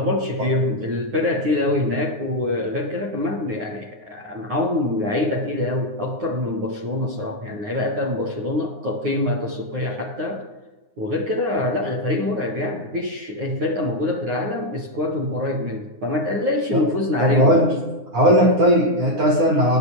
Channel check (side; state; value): left; late; 9.7 ms